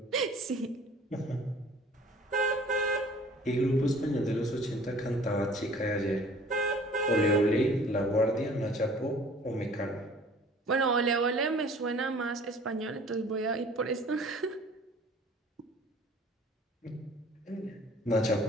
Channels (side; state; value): both; normal; correlation 0.50